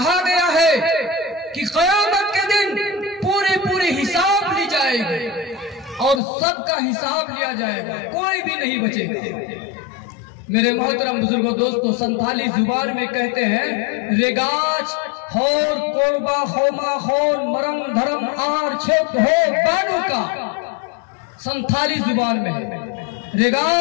गया है कि क़यामत के दिन पूरी पूरी हिसाब ली जाएगी और सबका हिसाब लिया जाएगा, कोई भी नहीं बचेगा। मेरे मोहतरम बुजुर्गों, दोस्तों, संथाली जुबान में कहते हैं रेगाज होर कोरबा होमा होर मरम धरम आर छेद हो बानू का। संथाली जुबान में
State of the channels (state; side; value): drops out; right; at 6.2 s